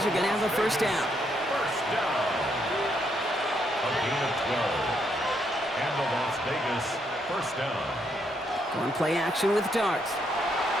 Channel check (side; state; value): both; normal; correlation 0.75